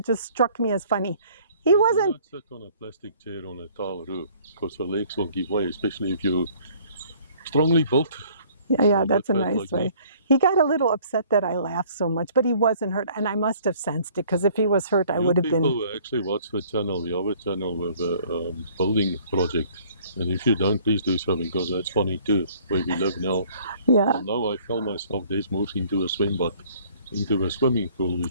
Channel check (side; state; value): both; inverted; correlation -0.56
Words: just struck me as funny. He wasn't... You don't sit on a plastic chair on a tile roof, because the legs will give way, especially if you're strongly built. Yeah, that's a nice way. He got a little upset that I laughed so much, but he wasn't hurt, and I must have sensed it, because if he was hurt, I would have been... People actually watch the channel, the other channel with a building project, and if you don't, please do so, because that's funny too, where we live now. Yeah. And now I fell myself, Des moves into a swimming pool,